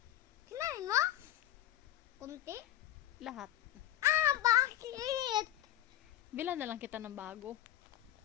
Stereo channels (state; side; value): quieter; right; 12.9 dB